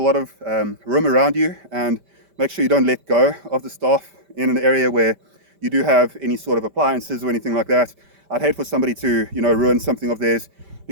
of room around you, and make sure you don't let go of the staff in an area where you do have any sort of appliances or anything like that. I'd hate for somebody to, ruin something of theirs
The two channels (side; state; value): left; late; 5.1 ms